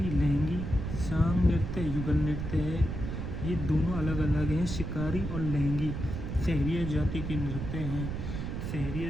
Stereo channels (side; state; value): right; noise; rumble, 4 dB below the sound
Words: लहंगी, सांग नृत्य युगल नृत्य है, ये दोनों अलग अलग हैं, शिकारी और लहंगी सहरिया जाति के नृत्य हैं।